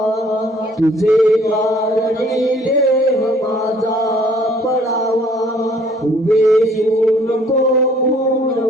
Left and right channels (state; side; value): normal; both; correlation 0.59